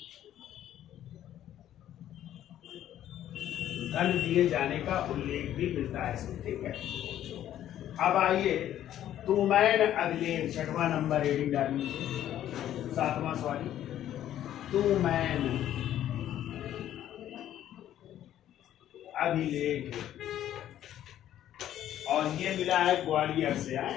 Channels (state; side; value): quieter; right; 11.7 dB